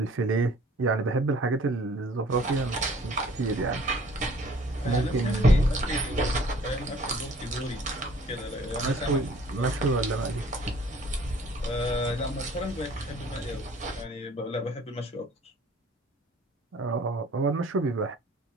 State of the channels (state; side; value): normal; both; correlation 0.54